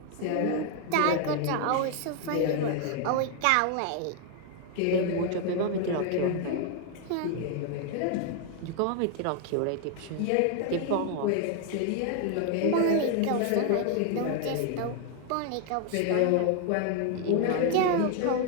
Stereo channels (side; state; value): both; different; correlation 0.00